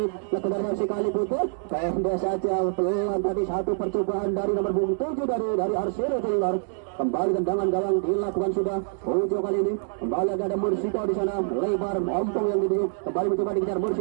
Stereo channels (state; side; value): silent; left; 59 dB below the other